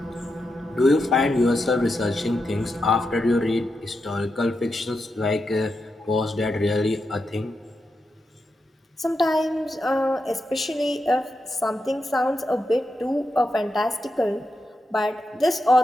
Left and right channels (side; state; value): both; normal; correlation 0.87